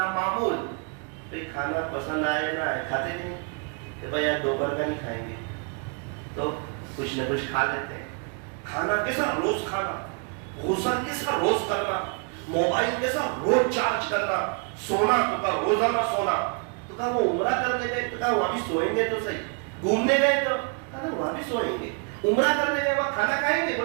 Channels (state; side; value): quieter; left; 37.5 dB